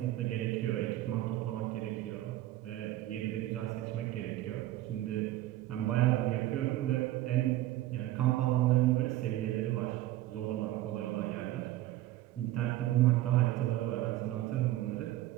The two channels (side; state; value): left; quieter; 15.1 dB